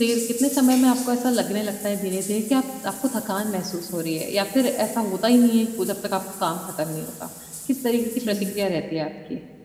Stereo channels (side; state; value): both; identical; correlation 1.00